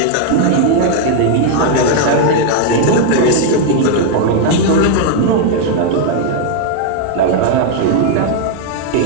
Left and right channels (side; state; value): both; different; correlation 0.00